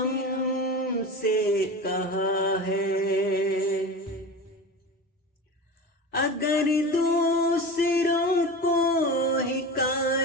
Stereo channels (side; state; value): both; normal; correlation 0.29